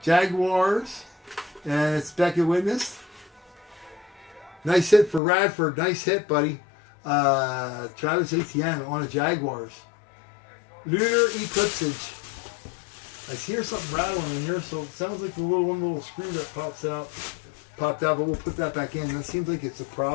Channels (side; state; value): right; drops out; at 5.2 s